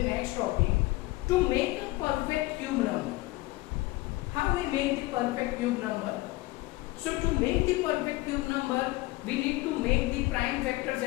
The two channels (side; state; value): right; quieter; 20.3 dB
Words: next topic, to make a perfect cube number? How we make the perfect cube number? So to make the perfect cube number, we need to make the prime factors